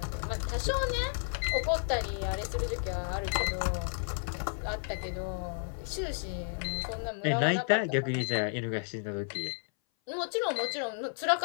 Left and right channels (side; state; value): right; silent; 56 dB below the other